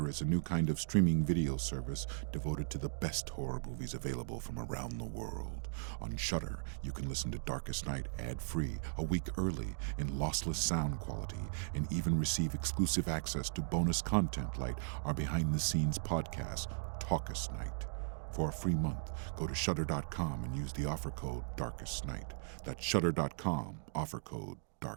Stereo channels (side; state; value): left; silent; digital silence